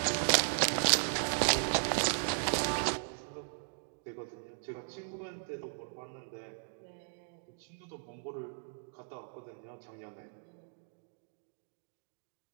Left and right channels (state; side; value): silent; left; digital silence